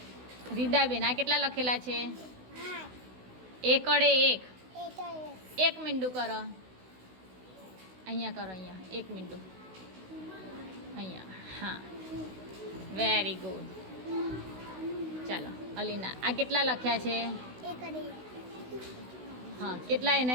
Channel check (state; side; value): late; left; 16 ms